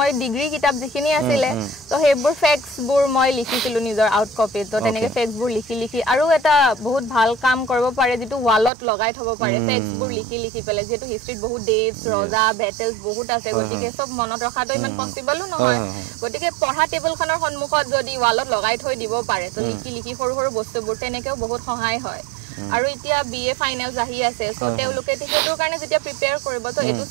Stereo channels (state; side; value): drops out; left; at 8.7 s